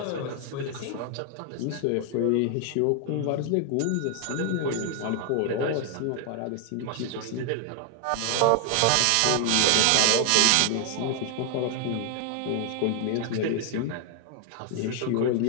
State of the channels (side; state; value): both; different; correlation 0.00